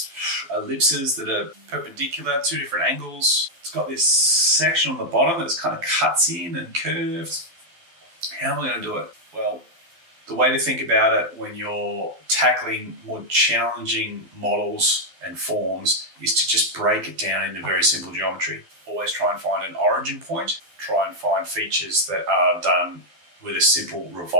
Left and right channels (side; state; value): left; late; 12 ms